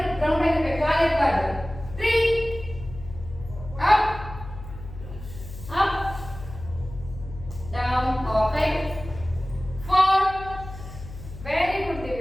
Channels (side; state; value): left; noise; hum, 13 dB below the sound